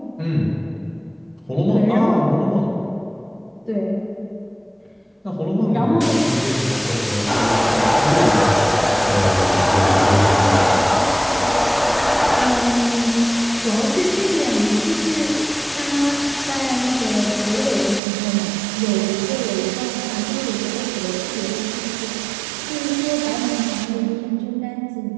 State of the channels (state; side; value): drops out; left; at 18.0 s